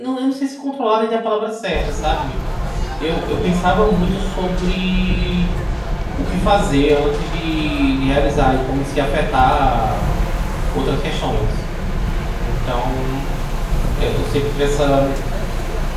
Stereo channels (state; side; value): identical; both; correlation 1.00